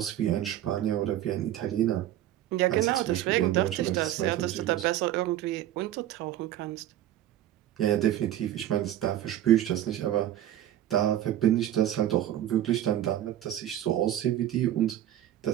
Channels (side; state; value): left; quieter; 12.5 dB